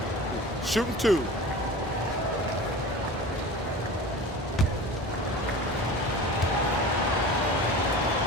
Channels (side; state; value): both; normal; correlation 0.36